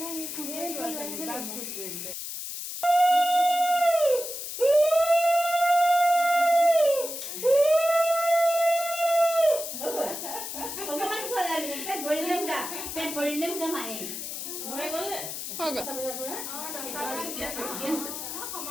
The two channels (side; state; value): left; noise; hiss, 7 dB below the sound